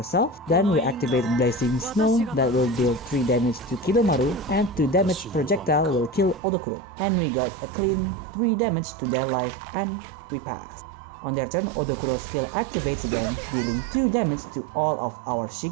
Then we activate Blazing Snow that will deal 3 damage to Kidomaru, and 2 damage projectile will kill Odokuro. And we got a clean 3 damage to their life and we pass. On their turn, Odokuro's skill activates again, dealing 2 damage to all of our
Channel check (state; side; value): drops out; left; at 6.4 s